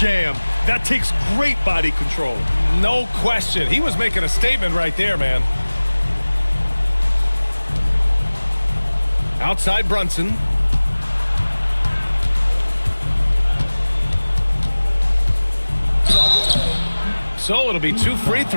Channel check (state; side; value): inverted; both; correlation -1.00